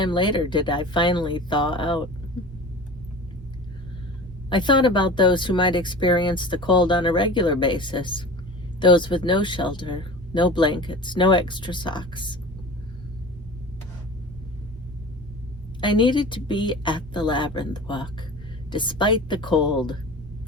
later did I finally thaw out. I thought about those who might experience the cold on a regular basis, those with no shelter, no blankets, no extra socks. I needed to be at the labyrinth walk, despite the cold.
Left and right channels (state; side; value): normal; both; correlation 0.36